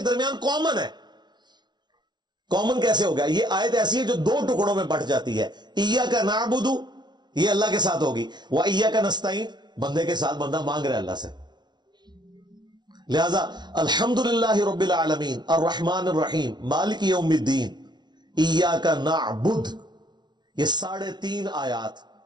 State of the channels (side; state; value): left; late; 0.20 ms